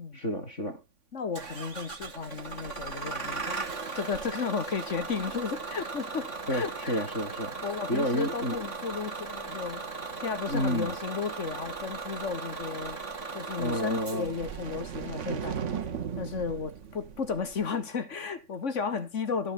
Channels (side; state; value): right; late; 3.5 ms